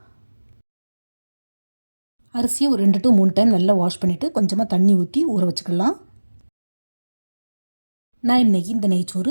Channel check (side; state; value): both; inverted; correlation -1.00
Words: அரிசியை ஒரு 2 to 3 டைம் நல்லா வாஷ் பண்ணிவிட்டு கொஞ்சமாக தண்ணி ஊற்றி ஊற வச்சுக்கலாம். நான் இன்றைக்கி இந்த நெய்ச்சோறு